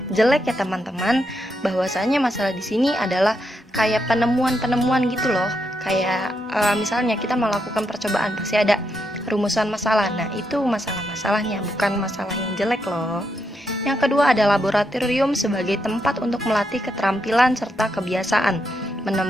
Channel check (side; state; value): both; normal; correlation 0.81